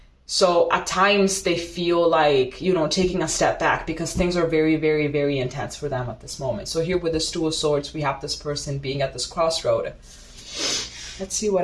So at times they feel like, you know, taking a step back because things are very, very, very intense for them at this moment. So here with the Two of Swords, we have this person being at this crossroad. Let's see what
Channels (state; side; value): identical; both; correlation 1.00